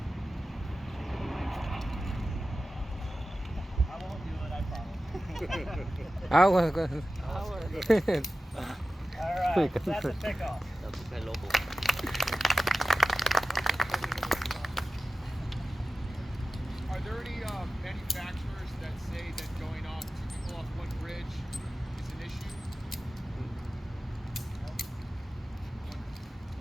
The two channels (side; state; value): both; normal; correlation 0.95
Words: I won't do it, I promise. Alright, that's a pickoff. Are there any manufacturers that say that going off two people off one bridge is an issue?